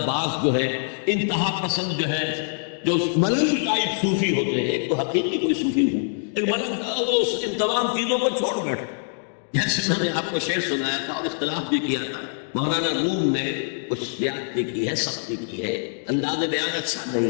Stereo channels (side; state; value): right; silent; 62 dB below the other